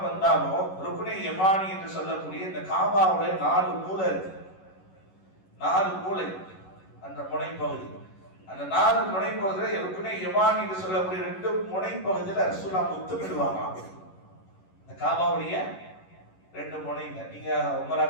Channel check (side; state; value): right; late; 11 ms